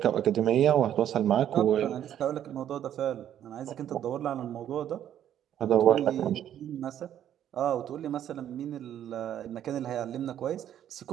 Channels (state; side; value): quieter; left; 10.6 dB